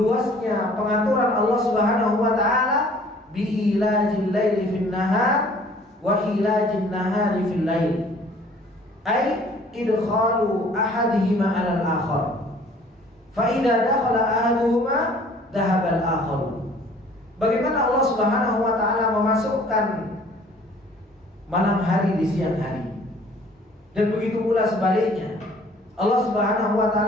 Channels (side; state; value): both; normal; correlation 0.54